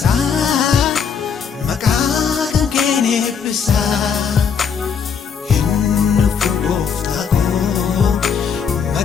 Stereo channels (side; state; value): right; quieter; 6.7 dB